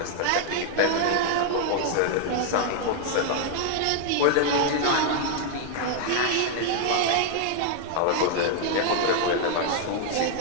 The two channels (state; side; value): different; both; correlation 0.00